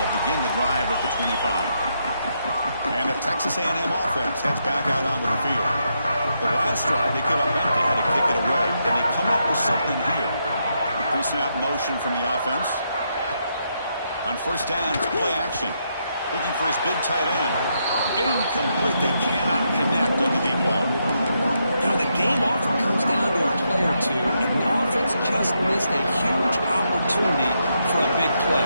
begin the drive at the 25. And the Texas A&M offense heads back out onto the field. The last drive, they came up empty, had to kick it away. Then they come up with something here. Pre-snap motion from the offense. On 1st down, it's play action. Looking for his big tight end. Incomplete. They cannot connect on the deep ball. You know, the game often comes down to a play or two, and the offense just missed a huge opportunity for a big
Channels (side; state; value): both; inverted; correlation -0.80